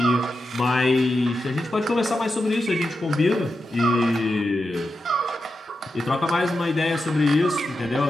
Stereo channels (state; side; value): normal; both; correlation 0.89